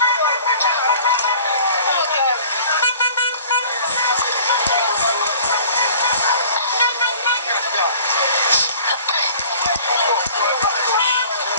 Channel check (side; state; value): both; inverted; correlation -0.49